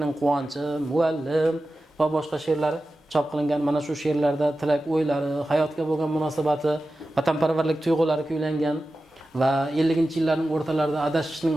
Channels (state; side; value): normal; both; correlation 0.94